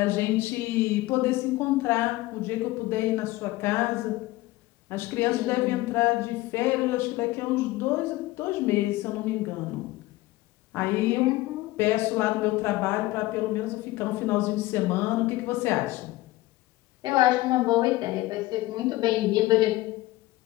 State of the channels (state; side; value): quieter; right; 18.5 dB